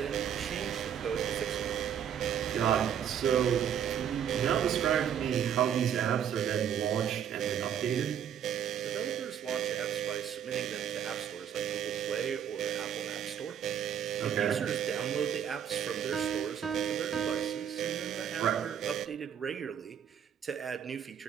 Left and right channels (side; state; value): left; quieter; 8.9 dB